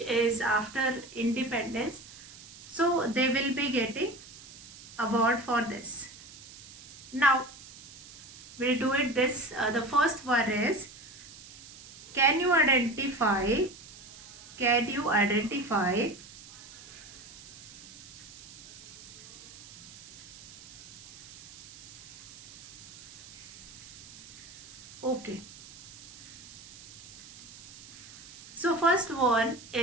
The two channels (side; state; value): right; noise; hiss, 17 dB below the sound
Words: is after independence. So they will be getting award for this. Now we'll do it this. The first one is, can you identify okay. So first one